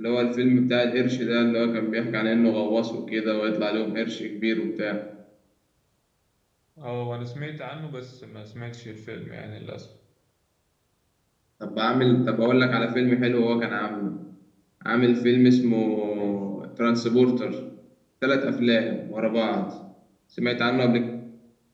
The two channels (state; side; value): identical; both; correlation 1.00